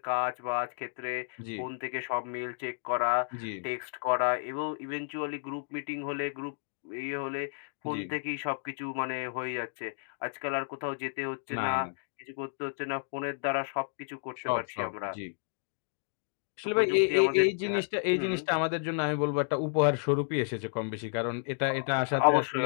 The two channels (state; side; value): silent; right; digital silence